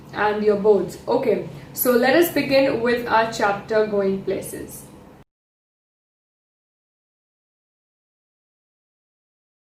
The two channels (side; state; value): both; identical; correlation 1.00